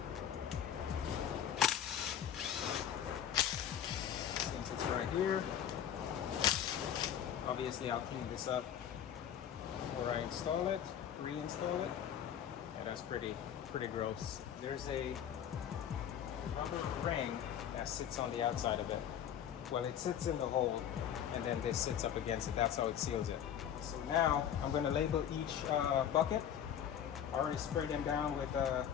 Since it's right here, obviously I'll clean this up before I install it, reinstall it. Yeah, that's pretty gross. There's a rubber ring that sits on the outside of it. Well, it sits in the hole, and then this sits up against it. That's how it seals it. So now I'm going to label each bucket. I already sprayed them down with a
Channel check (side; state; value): right; quieter; 9.4 dB